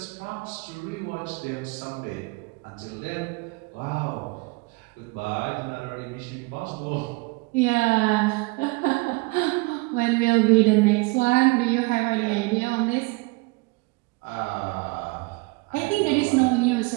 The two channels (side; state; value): left; quieter; 26.0 dB